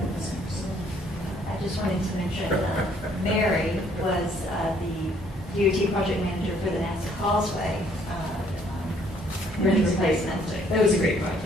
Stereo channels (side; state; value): both; normal; correlation 0.64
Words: I just wanted to mention, Mary was the DOT project manager for the NASA Causeway bridge replacement. That was a great